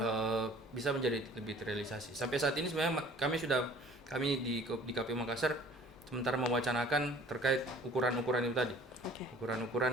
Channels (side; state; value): both; normal; correlation 0.51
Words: bisa menjadi lebih terrealisasi. Sampai saat ini sebenarnya kami di KPU Makassar sementara mewacanakan terkait ukuran-ukuran itu tadi.